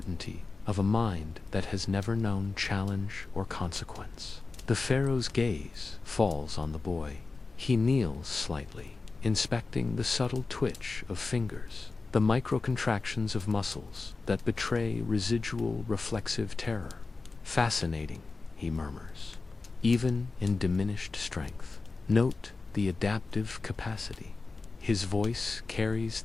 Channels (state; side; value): quieter; right; 3.9 dB